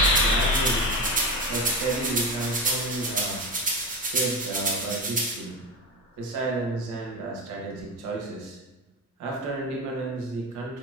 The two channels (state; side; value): normal; both; correlation 0.21